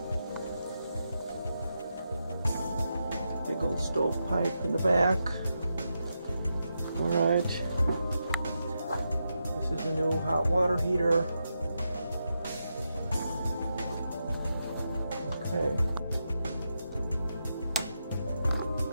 Big old stove pipe in the back. Alright. This is a new hot water heater. Okay.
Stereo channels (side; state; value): both; inverted; correlation -0.85